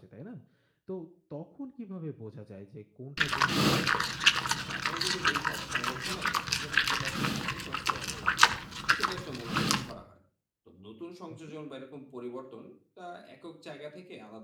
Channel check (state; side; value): identical; both; correlation 1.00